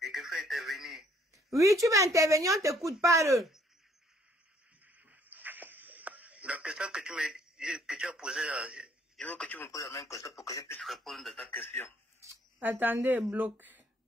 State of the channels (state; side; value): normal; both; correlation 0.64